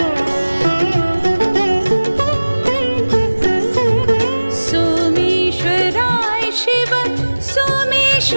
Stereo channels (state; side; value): inverted; both; correlation -1.00